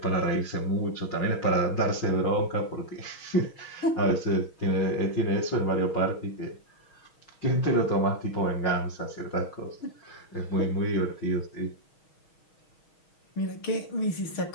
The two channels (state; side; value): late; right; 6.3 ms